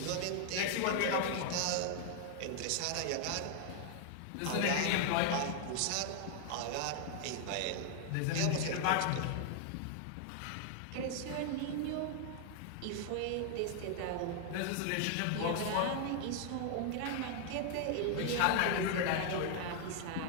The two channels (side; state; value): both; different; correlation 0.00